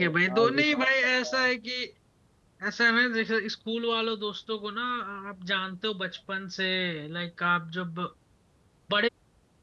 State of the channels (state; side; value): identical; both; correlation 1.00